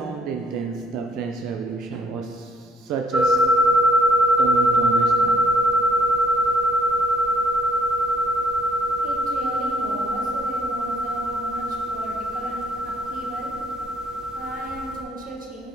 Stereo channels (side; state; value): both; normal; correlation 0.64